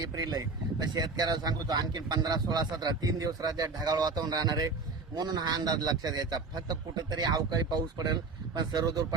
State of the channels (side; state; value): left; quieter; 4.1 dB